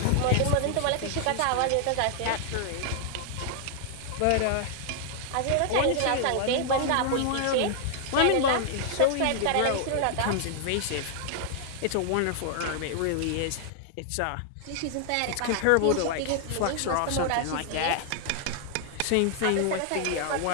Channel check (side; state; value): both; different; correlation 0.00